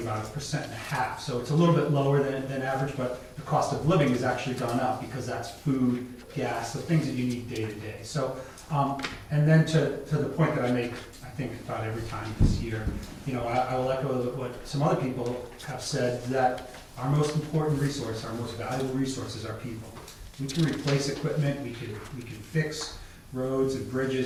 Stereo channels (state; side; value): identical; both; correlation 1.00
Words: about 1.5%. So it's a little bit lower than average, but the cost of living has actually gone up because that's food, gas, the things that you need day to day. So, and then to the point that I make, I think about every time this year, I will echo what some other people have said, that our most important resource, our most valuable resource is our people. We can replace equipment, we can fix roads and